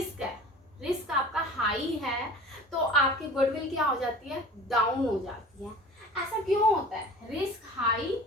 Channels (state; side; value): normal; both; correlation 0.41